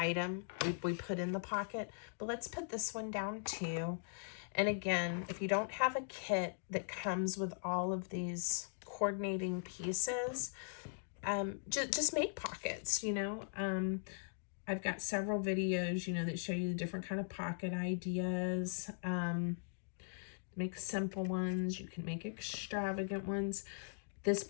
we put in the pocket. But let's put this one down too. And again, if you don't have a kit that comes with all of these coordinating pieces, just make pockets, you know. I've got several videos, you know, that show you the different kind of pocket ideas. Make simple ones. You can make extravagant ones. This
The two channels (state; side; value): silent; right; digital silence